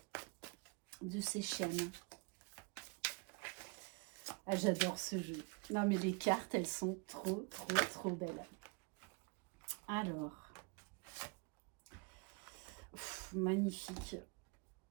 de ses chaînes. Ah, j'adore ce jeu. Non, mais les cartes, elles sont trop, trop, trop belles. Alors, magnifique.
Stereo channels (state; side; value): quieter; left; 31.0 dB